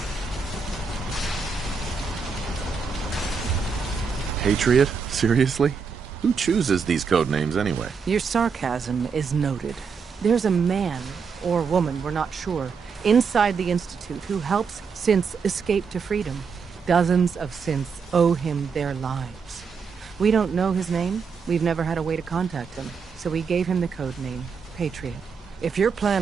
Patriot? Seriously? Who chooses these code names anyway? Your sarcasm is noted. There's a man, or woman, we're not sure, inside the Institute who helps synths escape to freedom. Dozens of synths owe him their lives. We don't know his name. We've never had a way to contact him. So we gave him the code name, Patriot. If your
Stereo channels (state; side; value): quieter; left; 5.6 dB